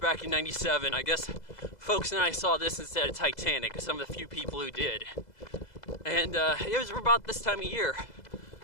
in '97. I guess folks and I saw this instead of Titanic, some of the few people who did. And it was about this time of year.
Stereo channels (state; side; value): late; right; 2.0 ms